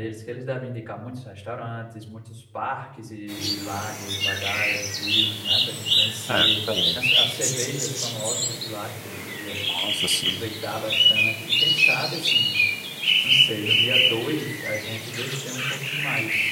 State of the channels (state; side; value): identical; both; correlation 1.00